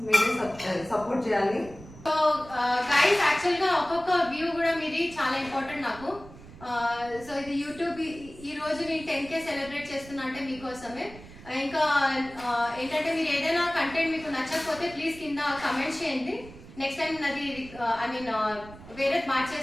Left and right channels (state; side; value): noise; right; rumble, 18 dB below the sound